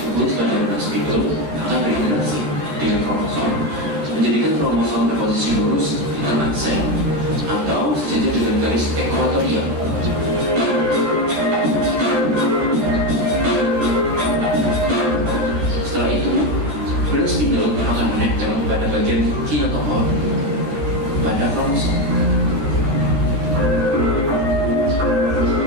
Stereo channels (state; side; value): late; left; 13 ms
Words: pada benang spindle akan berinteraksi dengan kromosom, menjadikan kromosom berposisi lurus di tengah sel atau sejajar dengan garis ekuatorial. Setelah itu, benang spindle akan menempel pada bagian kinetochore pada kromosom.